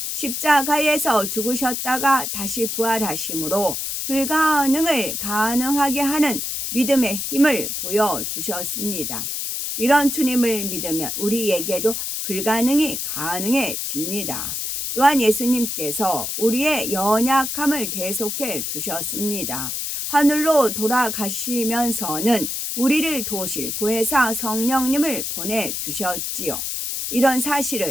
십자가에서 죽으셨다가 다시 부활하심으로 불가능을 가능하게 하는 믿음의 힘을 보여주셨습니다. 이런 주님을 믿으면 우리에게도 불가능이 가능해집니다. 또한 예수님께서 우리의 연약함을 대속해 주셨습니다. 하늘로 돌아가시면서는 우리를 도우실 보혜사 성령님을 보내주셨지요. 이런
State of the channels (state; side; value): noise; left; hiss, 3 dB below the sound